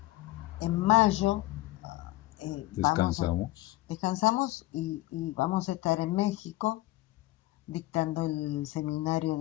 en mayo Descansamos. descansamos y vamos a estar en México dictando el seminario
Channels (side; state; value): right; quieter; 18.3 dB